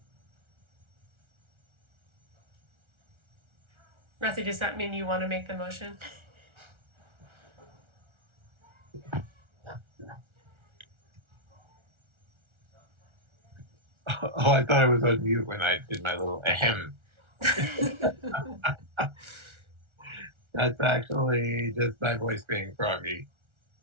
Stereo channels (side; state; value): left; late; 1.4 ms